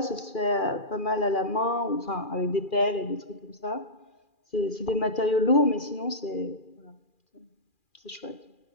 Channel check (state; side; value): late; right; 2.4 ms